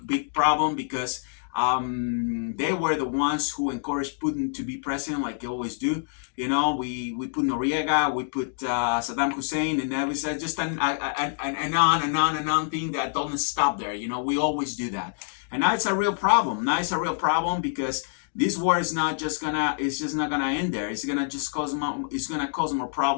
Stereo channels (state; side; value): silent; right; digital silence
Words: problem, because they were the ones who encouraged Putin to be president, like they always do. We put Noriega, we put Saddam Hussein, and that was just an on thing that doesn't stop there. We always do that, and now it's a real problem. Because this war is just not gonna end there. It's gonna cause more